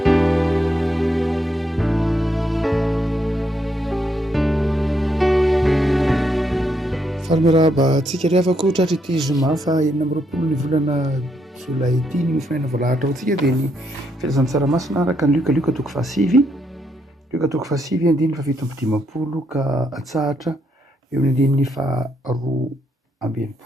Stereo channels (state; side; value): normal; both; correlation 0.77